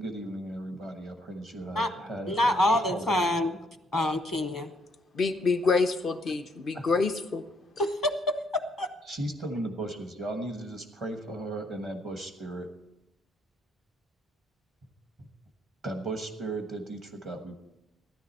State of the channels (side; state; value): both; normal; correlation 0.70